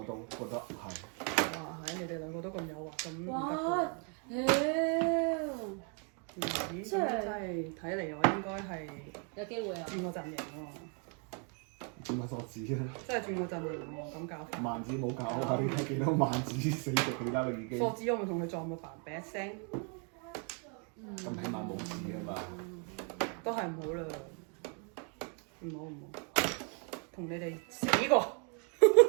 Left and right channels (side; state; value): left; quieter; 38.8 dB